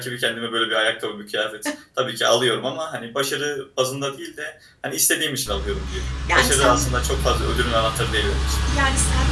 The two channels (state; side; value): identical; both; correlation 1.00